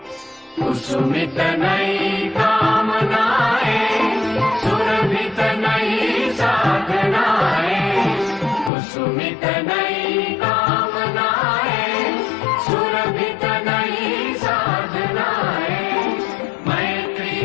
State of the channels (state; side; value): drops out; right; at 8.7 s